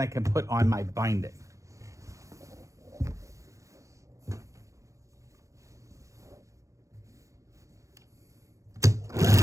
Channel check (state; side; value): late; left; 0.15 ms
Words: I can put on my binding.